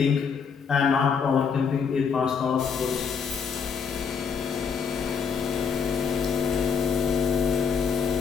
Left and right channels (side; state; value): right; quieter; 6.2 dB